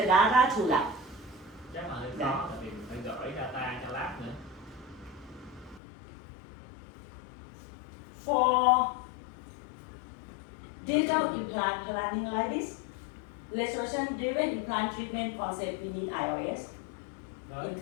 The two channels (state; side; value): drops out; right; at 5.8 s